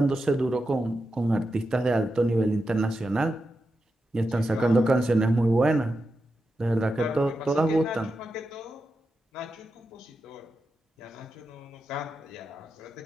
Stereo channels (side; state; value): both; normal; correlation 0.89